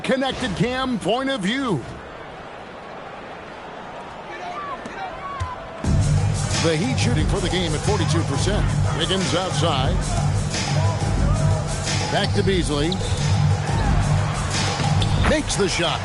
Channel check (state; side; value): identical; both; correlation 1.00